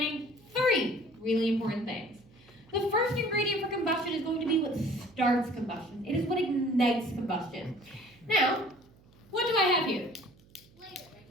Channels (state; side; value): noise; right; hum, 28 dB below the sound